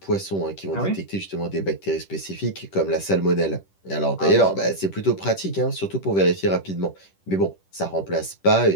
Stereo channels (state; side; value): late; right; 10 ms